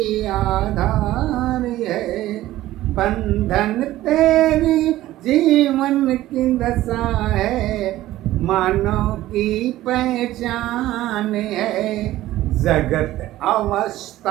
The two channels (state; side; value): quieter; left; 15.3 dB